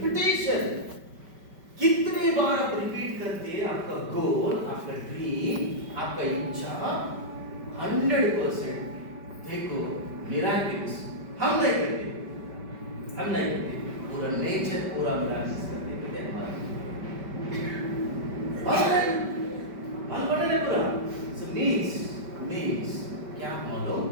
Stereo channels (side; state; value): left; late; 5.2 ms